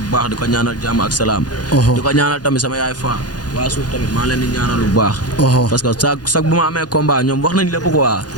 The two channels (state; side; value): late; right; 0.69 ms